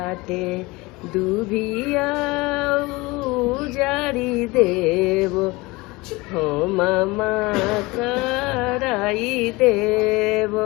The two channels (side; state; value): right; quieter; 22.8 dB